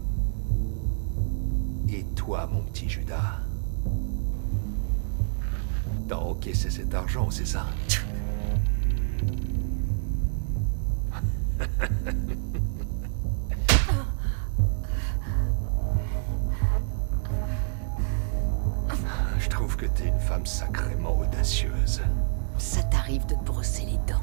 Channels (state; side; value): silent; left; digital silence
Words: Et toi, mon petit Judas, t'as encaissé cet argent, c'est ça? Je trouve que t'es une femme sacrément audacieuse. Ça t'arrive de te brosser les dents.